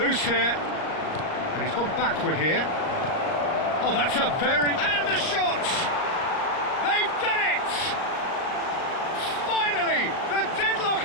here. And he's gone backward here. Oh, that's a very... And the shot! They've done it! Finally, the deadlock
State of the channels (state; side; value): late; right; 38 ms